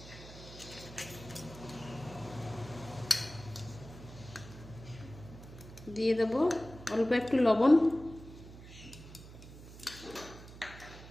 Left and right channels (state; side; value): noise; right; hum, 16 dB below the sound